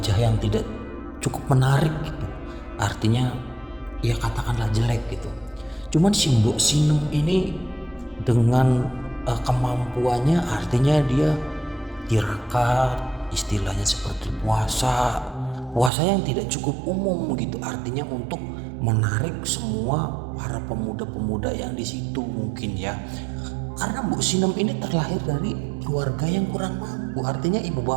yang tidak cukup menarik gitu. Artinya ya katakanlah jelek gitu. Cuman si Mbok Sinem ini dengan kemampuannya, artinya dia tirakat, istilahnya seperti puasa yang tidak cukup umum gitu. Artinya untuk menarik semua para pemuda-pemuda yang di situ mungkin ya. Karena Mbok Sinem ini terlahir dari keluarga yang kurang mampu. Artinya ibu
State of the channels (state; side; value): drops out; left; at 15.9 s